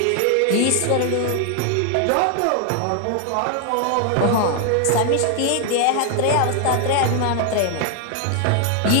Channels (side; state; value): both; different; correlation 0.00